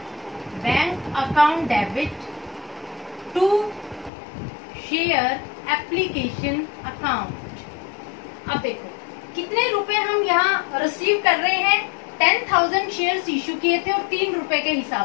debit to share application account. अब देखो कितने रुपए हम यहाँ रिसीव कर रहे हैं। 10,000 शेयर्स इश्यू किए थे और 3 रुपए के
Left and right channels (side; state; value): right; drops out; at 4.1 s